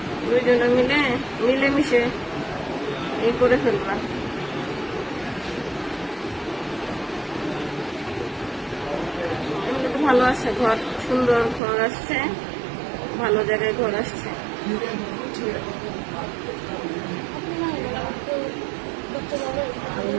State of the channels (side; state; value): left; drops out; at 11.6 s